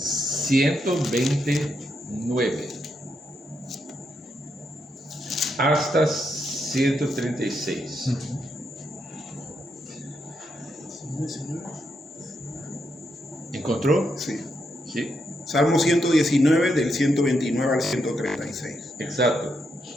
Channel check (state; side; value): normal; both; correlation 0.81